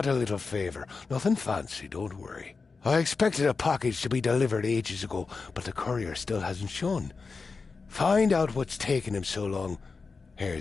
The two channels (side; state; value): right; quieter; 4.5 dB